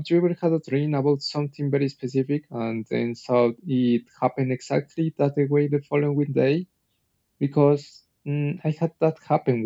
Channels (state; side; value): identical; both; correlation 1.00